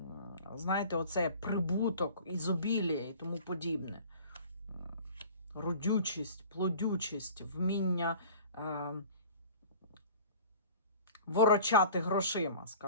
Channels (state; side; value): inverted; both; correlation -0.45